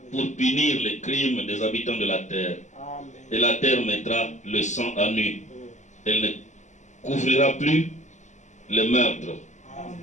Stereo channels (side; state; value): right; late; 0.34 ms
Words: pour punir les crimes des habitants de la terre. Et la terre mettra le sang à nu. Elle ne couvrira plus le meurtre. Amen.